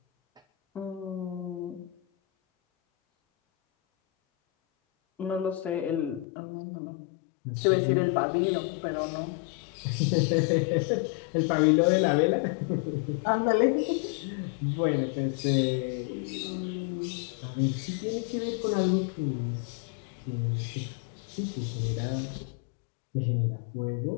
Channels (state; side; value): drops out; right; at 6.2 s